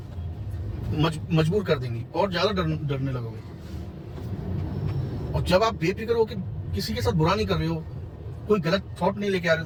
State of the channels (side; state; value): both; identical; correlation 1.00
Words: मजबूर कर देंगी, और ज्यादा डरने लगोगे। और जब आप बेफिक्र हो कि किसी के साथ बुरा नहीं कर रहे हो, कोई गलत थॉट नहीं लेके आ रहे हो